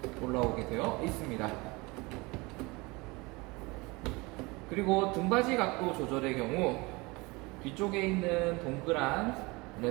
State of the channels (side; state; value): left; quieter; 24.7 dB